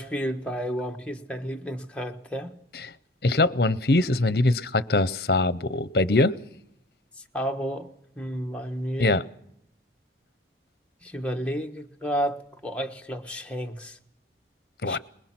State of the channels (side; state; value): both; normal; correlation 0.45